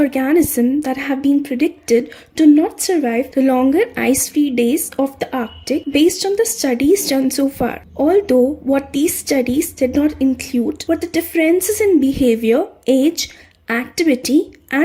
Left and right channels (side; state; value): both; identical; correlation 1.00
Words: that have been predicted to not survive the longer ice-free days of the Arctic based on the studies done so far. Although what these studies did not include were the differences in behavior, age, activity,